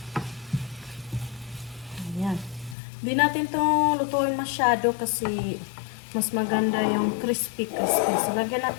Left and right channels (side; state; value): right; drops out; at 2.8 s